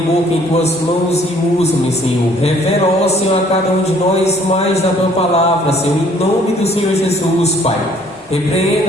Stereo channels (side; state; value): both; normal; correlation 0.59